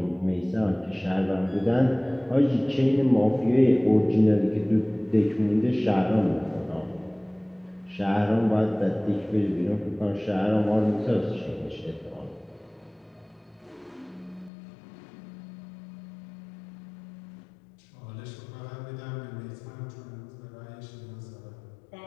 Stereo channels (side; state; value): right; drops out; at 14.5 s